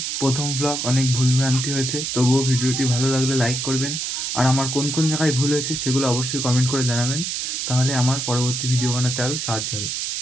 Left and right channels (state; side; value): noise; right; hiss, 2 dB below the sound